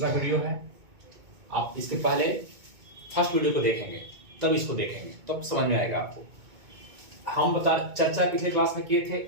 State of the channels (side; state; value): left; late; 2.2 ms